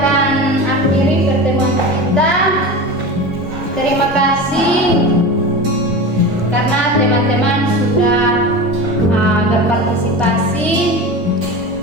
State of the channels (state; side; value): normal; both; correlation 0.29